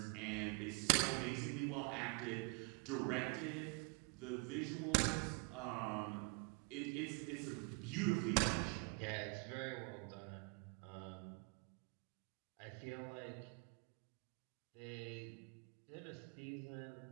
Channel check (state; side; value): quieter; left; 31.0 dB